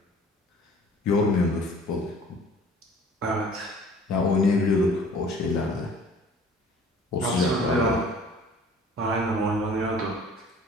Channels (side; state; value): both; normal; correlation 0.50